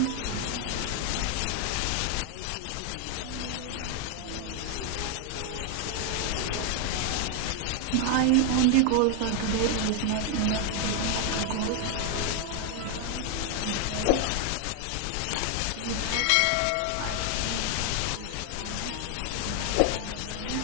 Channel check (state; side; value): different; both; correlation 0.01